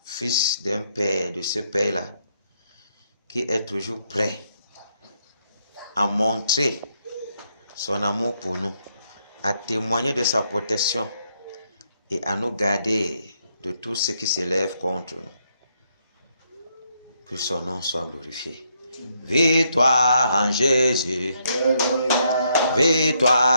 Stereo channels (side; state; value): both; inverted; correlation -0.76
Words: fils d'un Père, de ce Père-là, qui est toujours prêt à montrer son amour pour nous, à témoigner de sa protection et à nous garder de tout ce qui s'élève contre nous. Que son nom soit glorifié. Victoire en Jésus.